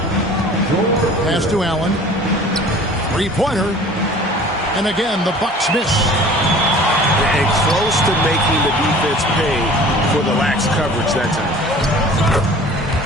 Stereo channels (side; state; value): both; normal; correlation 0.46